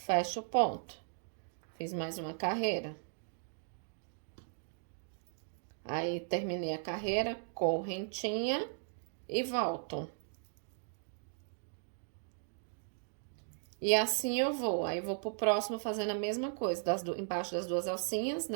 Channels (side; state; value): left; silent; digital silence